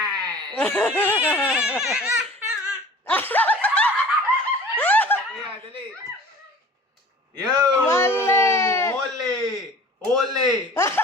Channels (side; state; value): both; normal; correlation 0.44